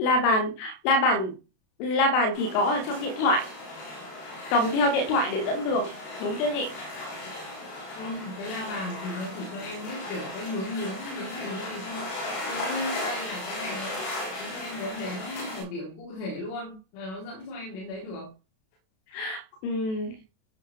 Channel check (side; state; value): right; late; 32 ms